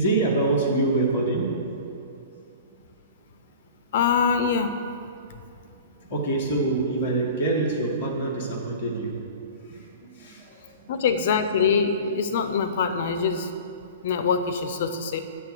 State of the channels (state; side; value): inverted; both; correlation -0.38